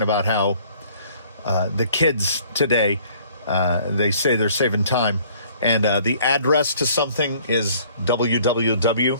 about how the kids today, they say they're saving time, and the address to something is www.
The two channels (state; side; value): inverted; both; correlation -0.57